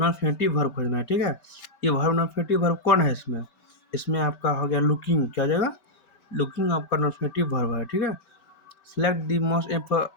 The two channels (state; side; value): late; right; 5.2 ms